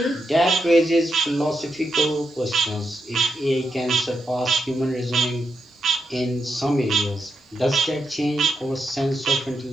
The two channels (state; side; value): normal; both; correlation 0.84